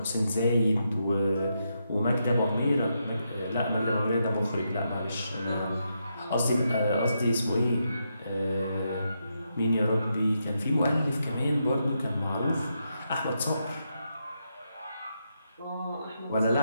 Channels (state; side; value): inverted; both; correlation -0.82